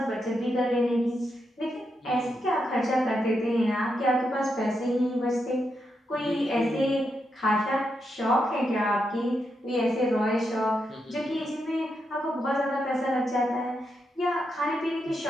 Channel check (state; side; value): normal; both; correlation 0.83